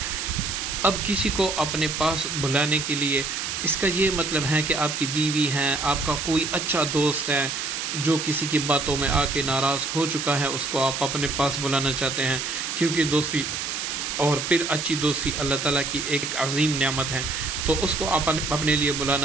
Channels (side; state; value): right; noise; hiss, 3 dB below the sound